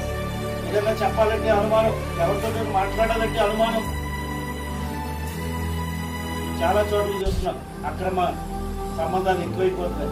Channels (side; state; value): both; identical; correlation 1.00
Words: ఏదైనా చెప్పాలంటే అనుమానం, ఎవరితో మాట్లాడాలంటే అనుమానం. చాలా చోట్ల చూస్తున్నాం అక్రమ సంబంధాలు ఎక్కువైపోతున్నాయి.